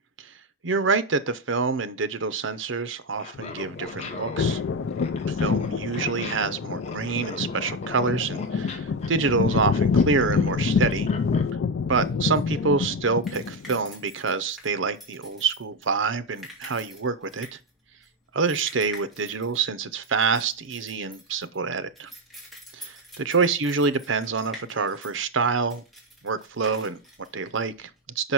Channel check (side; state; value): both; normal; correlation 0.08